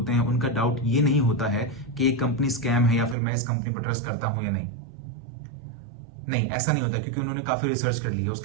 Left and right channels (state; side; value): drops out; left; at 3.2 s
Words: हैं उनका डाउट ये नहीं होता है कि एक कंपनी स्कैम है या फिर मैं इस कंपनी पर ट्रस्ट करता हूं या नहीं। नहीं, ऐसा नहीं होता, क्योंकि उन्होंने काफी रिसर्च कर ली है,